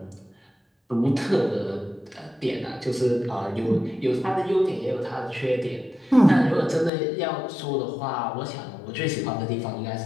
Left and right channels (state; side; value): drops out; right; at 6.9 s